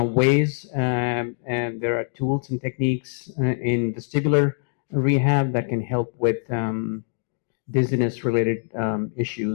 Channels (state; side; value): silent; right; digital silence